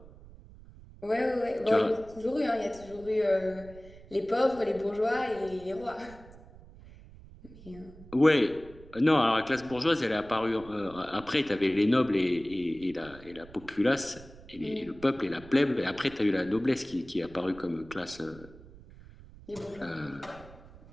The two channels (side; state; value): right; noise; rumble, 20 dB below the sound